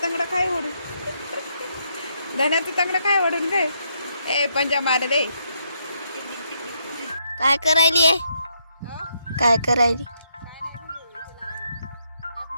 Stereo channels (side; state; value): both; inverted; correlation -0.76